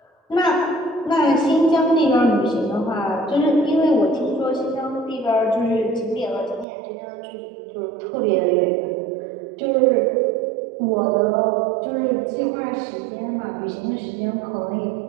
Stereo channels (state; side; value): drops out; left; at 6.7 s